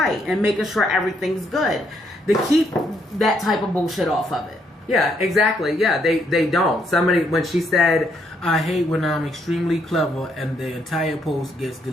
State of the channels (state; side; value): normal; both; correlation 0.73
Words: and making sure everything's good. To keep that type of bullshit off of it. Yeah, exactly. Yeah, they don't. Somebody, when she said, I hate when I'm extremely clever and the entire post gets